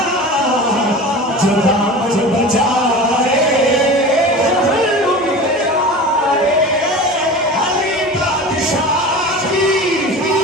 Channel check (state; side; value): normal; both; correlation 0.34